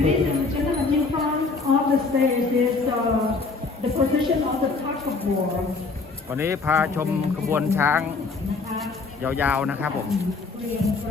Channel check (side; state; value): right; quieter; 4.1 dB